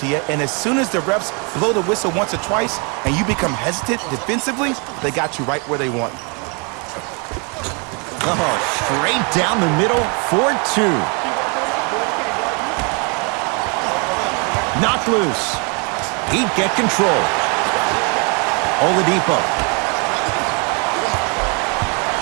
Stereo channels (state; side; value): quieter; left; 34.0 dB